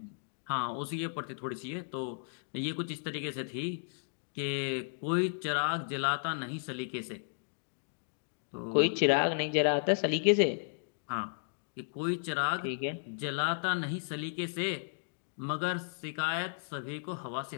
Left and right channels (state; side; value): silent; right; digital silence